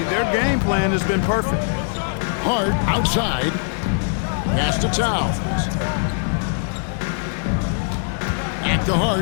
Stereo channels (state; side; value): silent; right; 65 dB below the other